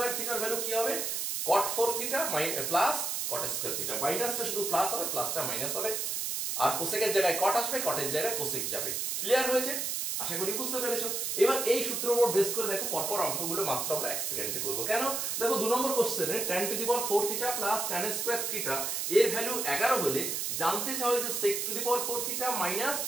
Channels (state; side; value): noise; right; hiss, 1 dB below the sound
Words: থিটার ভ্যালু কি হবে? cot 4 theta plus cot square theta. মাইনাসটা শুধু প্লাস হবে, প্লাসটা মাইনাস হবে, আর কোসেকের জায়গায় কট আসবে, কটের জায়গায় কোসেক যাবে। ক্লিয়ার হয়েছে? আশা করি বুঝতে পেরেছো। এবার এই সূত্রের উপর বেস করে দেখো পরপর অঙ্কগুলো মাত্র আমরা 1 সেকেন্ডে করব। কেন? দেখো 2 নম্বর কোশ্চেনে tan to the power 4 theta plus tan square theta এর ভ্যালু 11 হলে জানতে চাও যে sec to the power 4 theta minus